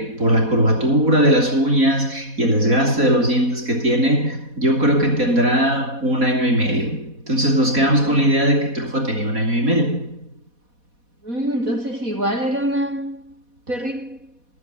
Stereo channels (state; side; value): late; left; 4.1 ms